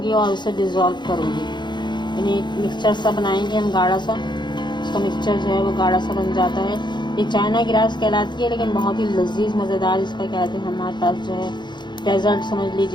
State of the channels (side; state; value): right; late; 0.22 ms